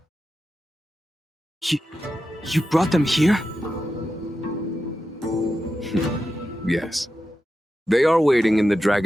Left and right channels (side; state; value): both; normal; correlation 0.90